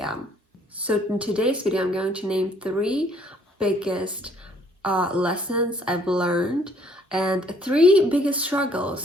so in today's video I'm going to name 3 biggest lessons I've learned and 3 biggest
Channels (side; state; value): both; normal; correlation 0.62